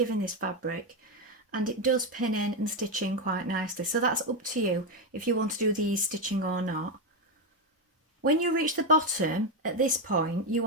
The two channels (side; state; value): both; normal; correlation 0.08